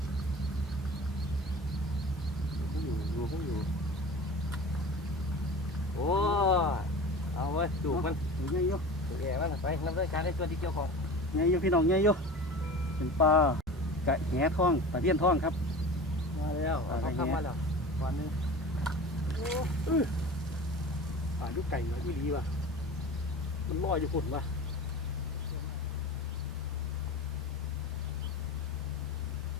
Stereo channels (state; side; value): normal; both; correlation 0.35